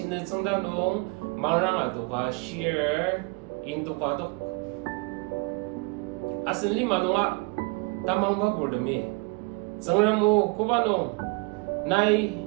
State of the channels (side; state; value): left; quieter; 28.7 dB